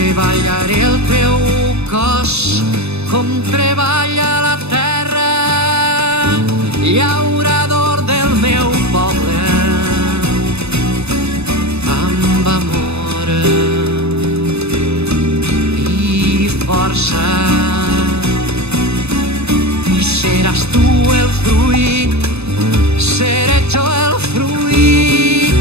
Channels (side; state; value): left; late; 0.80 ms